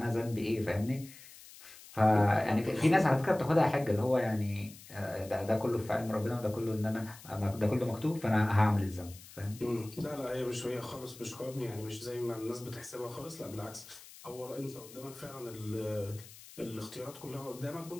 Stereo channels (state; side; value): noise; left; hiss, 18 dB below the sound